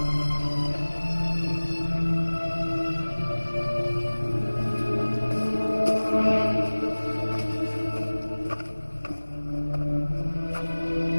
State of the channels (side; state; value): both; inverted; correlation -1.00